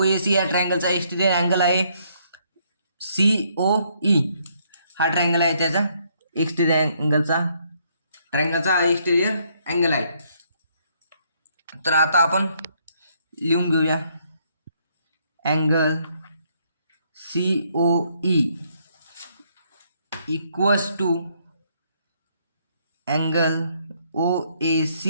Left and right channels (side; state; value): both; inverted; correlation -0.70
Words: या ट्रायंगलचा एक्सटेंडेड अँगल आहे COE. हा ट्रायंगल आहे त्याचा एक्सटेंडेड अँगलचा ट्रायंगलचा एक्सटेरियर अँगल आहे. तर आता आपण लिहून घेऊया angle COE equals to angle OAC